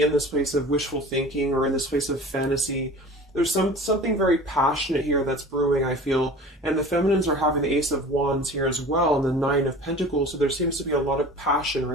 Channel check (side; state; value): both; normal; correlation 0.40